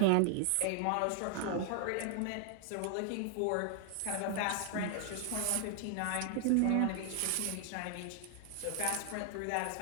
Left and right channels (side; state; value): both; different; correlation 0.00